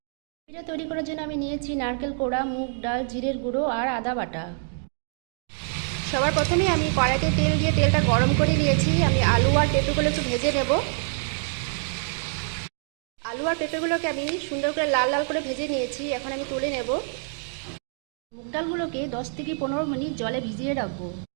এটা তৈরি করার জন্য আমি নিয়েছি নারকেল কোড়া, মুগ ডাল, জিরের গুঁড়ো আর আদা বাটা। সবার প্রথমে আমি কড়াইতে তেল দিয়ে তেলটা গরম করে নিয়েছি। আমি আলু আর পেঁপেগুলো একটু ভেজে নেব। আলু আর পেঁপেগুলোকে আমি সুন্দর করে লাল লাল করে ভেজে নিয়েছি। এখন আমি তুলে নেব। মুগ ডালগুলোকে 10 থেকে 15 মিনিট জলে ভিজিয়ে রাখবো।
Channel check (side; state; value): left; silent; 61 dB below the other